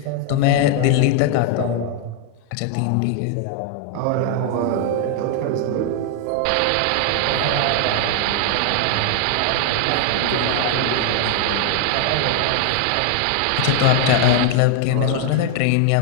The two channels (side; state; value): both; different; correlation 0.00